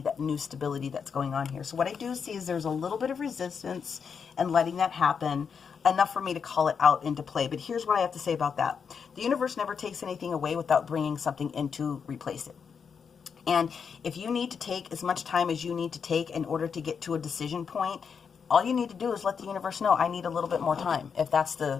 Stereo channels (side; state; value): right; quieter; 6.4 dB